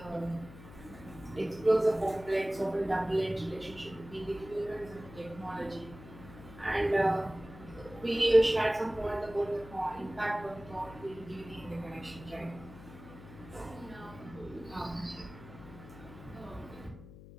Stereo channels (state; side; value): noise; left; hum, 17 dB below the sound